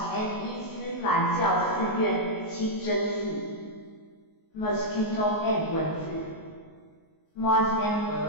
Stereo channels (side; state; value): right; late; 19 ms